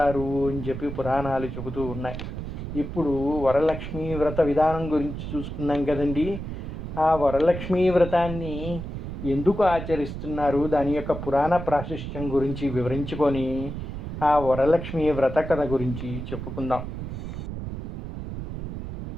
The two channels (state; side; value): noise; right; rumble, 7 dB below the sound